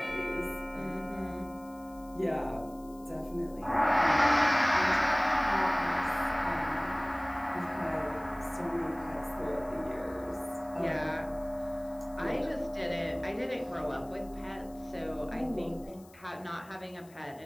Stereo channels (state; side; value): noise; left; hiss, 26 dB below the sound